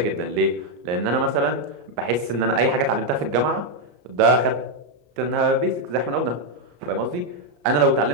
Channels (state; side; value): late; left; 34 ms